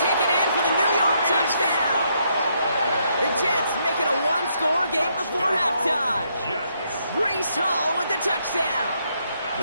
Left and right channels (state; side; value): inverted; both; correlation -0.75